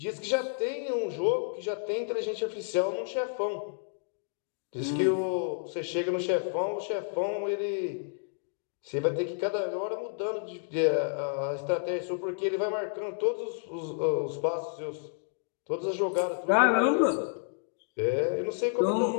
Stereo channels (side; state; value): right; silent; digital silence